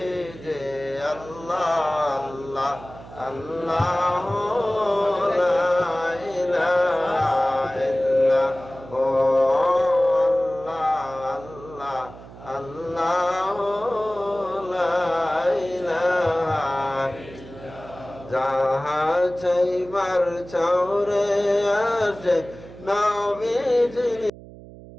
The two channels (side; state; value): right; noise; hum, 17 dB below the sound